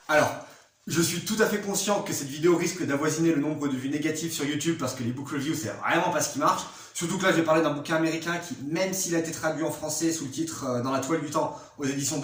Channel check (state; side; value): identical; both; correlation 1.00